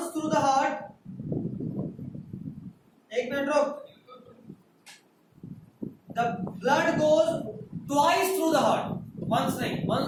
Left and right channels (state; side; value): identical; both; correlation 1.00